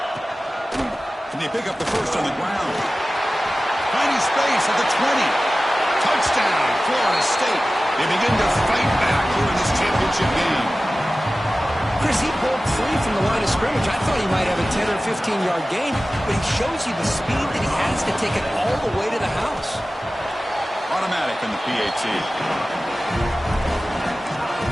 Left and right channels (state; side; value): normal; both; correlation 0.96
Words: Can they pick up the first on the ground? Finding space at the 20. Touchdown, Florida State. They begin to fight back here in this championship game. Chris, he broke free from the line of scrimmage. I thought he might have a 10 or 15-yard gain, but he shows you the speed that he has to take it all the way to the house. Automatic in the PAT.